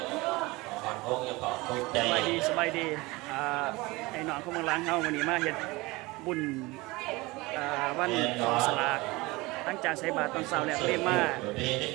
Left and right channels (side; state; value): left; quieter; 22.4 dB